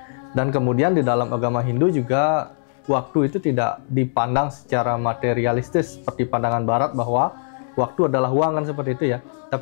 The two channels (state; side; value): silent; right; digital silence